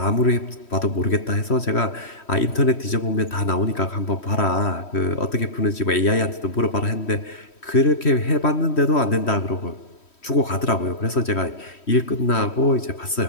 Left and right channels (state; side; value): late; right; 3.1 ms